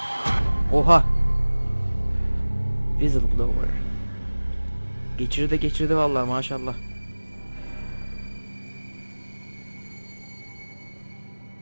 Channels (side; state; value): both; inverted; correlation -1.00